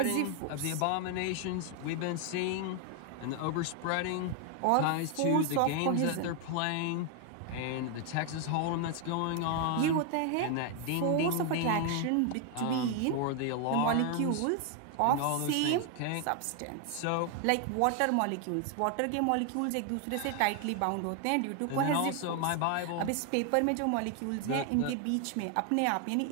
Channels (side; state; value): both; different; correlation 0.00